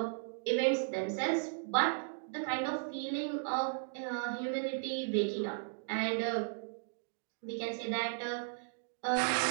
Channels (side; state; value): left; silent; digital silence